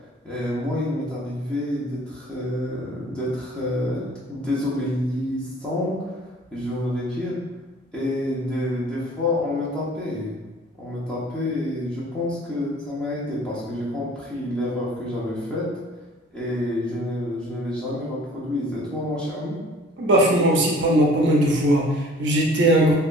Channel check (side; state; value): both; normal; correlation 0.50